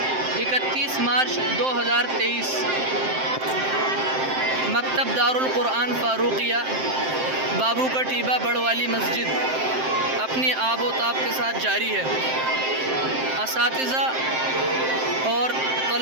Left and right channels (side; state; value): left; late; 7.7 ms